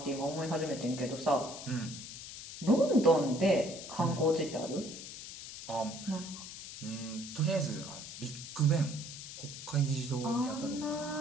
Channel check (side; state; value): left; noise; hiss, 11 dB below the sound